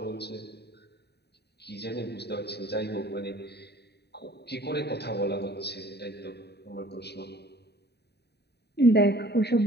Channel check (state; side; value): late; right; 0.48 ms